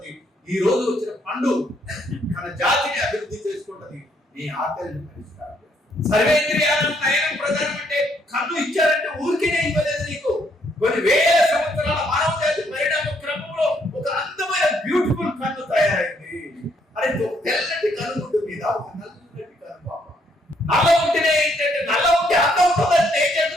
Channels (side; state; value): both; normal; correlation 0.70